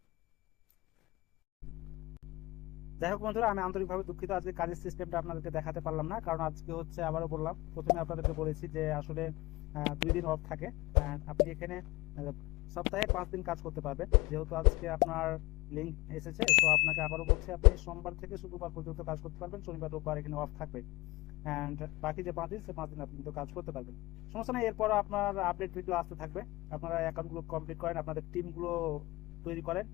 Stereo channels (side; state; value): right; quieter; 20.7 dB